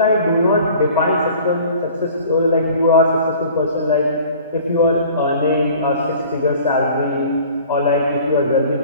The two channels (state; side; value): inverted; both; correlation -0.48